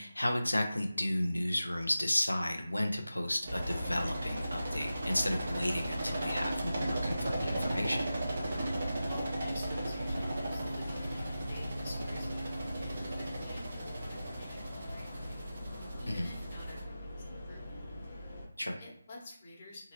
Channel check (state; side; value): inverted; both; correlation -0.94